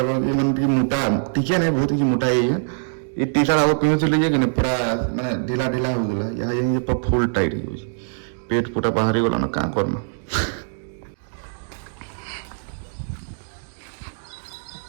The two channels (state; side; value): silent; left; digital silence